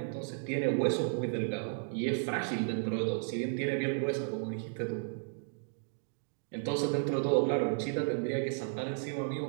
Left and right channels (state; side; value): silent; left; digital silence